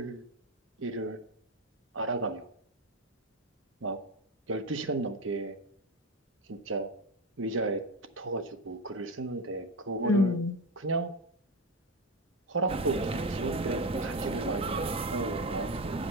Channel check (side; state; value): both; normal; correlation 0.16